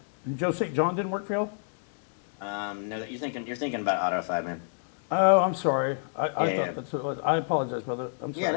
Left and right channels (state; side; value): silent; right; digital silence